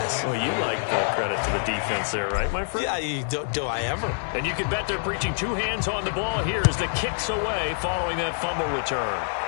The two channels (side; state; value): right; silent; digital silence